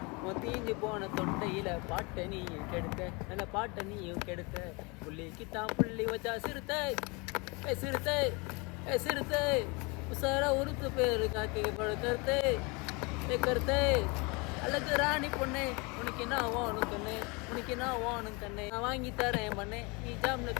தீஞ்சு போன தொண்டையில பாட்டை நீயும் கெடுத்த, நல்ல பாட்டை நீயும் கெடுத்த, புள்ளிக்கு தான் புள்ளி வச்சா சிறுத்தை சிறுத்தை சிறுத்தை உசாரா உறுத்து பேரு காக்கி படுக்கறுத்தை கருத்தை அழகு ராணி பொண்ணே உனக்கு நான் ஓணும் கண்ணு, உனக்கு நான் ஓணும் கண்ணு, நான் வாங்கி தரேன் பண்ணே, நீ ஜாம்னு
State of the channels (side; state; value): right; quieter; 28.6 dB